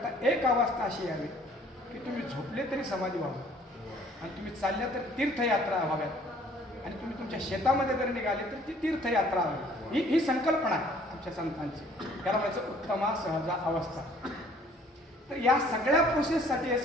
एक अवस्था अशी यावी की तुम्ही झोपले तरी समाधी व्हावं, आणि तुम्ही चालल्या तर तीर्थयात्रा व्हाव्यात, आणि तुम्ही तुमच्या शेतामध्ये जर निघाले तर ती तीर्थयात्रा व्हावी. ही संकल्पना आहे आमच्या संतांची. त्याला म्हणायचं उत्तमा सहजा अवस्था. तर या सगळ्या प्रोसेससाठी हे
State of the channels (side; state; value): both; normal; correlation 0.57